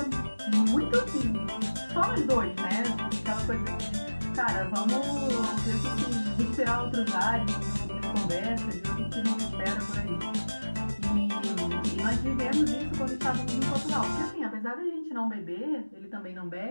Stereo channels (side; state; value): both; inverted; correlation -1.00